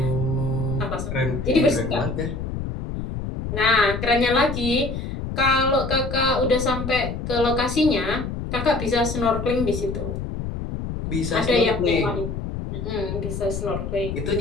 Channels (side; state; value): left; noise; rumble, 5 dB below the sound